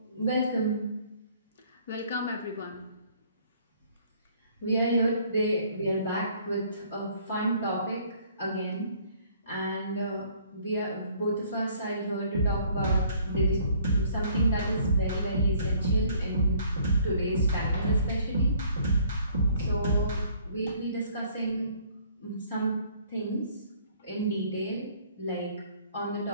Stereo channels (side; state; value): both; inverted; correlation -0.59